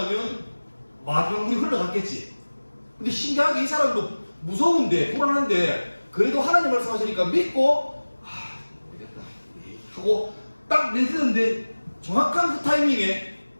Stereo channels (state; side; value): inverted; both; correlation -1.00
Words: 마지막 물이 흘러갔겠지. 근데 신기하게 이 사람도 무서운데 불안한데 그래도 하나님 말씀하시니까 믿고 되겠다 하고 딱 내딛는데 정확한 그 타이밍에